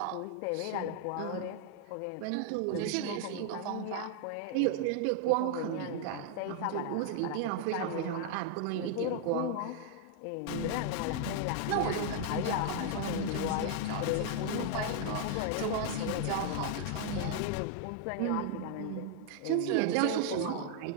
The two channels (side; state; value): both; different; correlation 0.00